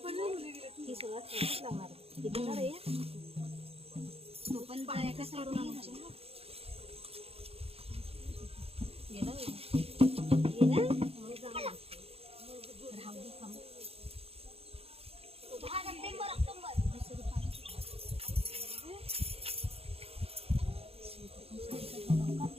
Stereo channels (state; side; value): late; left; 0.29 ms